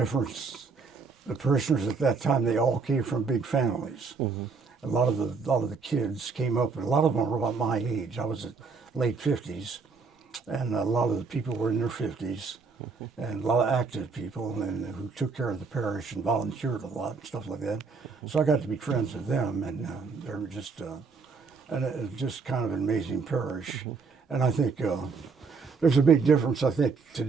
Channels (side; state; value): left; quieter; 4.8 dB